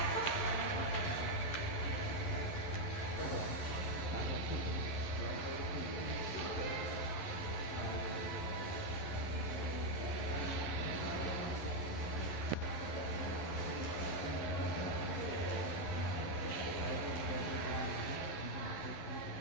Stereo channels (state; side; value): late; right; 11 ms